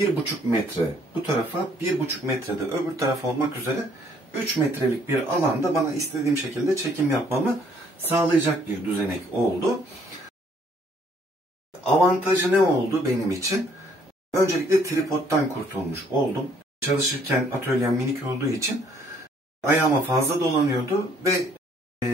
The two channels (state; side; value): normal; both; correlation 0.64